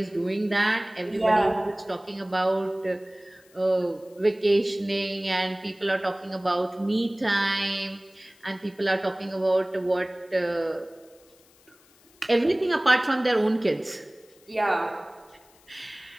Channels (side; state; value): left; noise; hiss, 29 dB below the sound